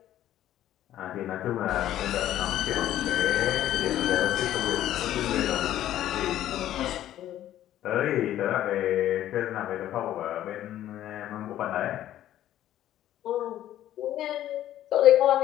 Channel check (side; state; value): right; quieter; 12.6 dB